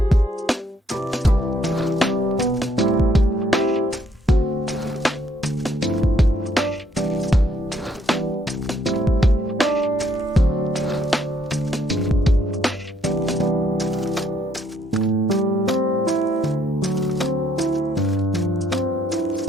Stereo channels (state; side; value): normal; both; correlation 0.69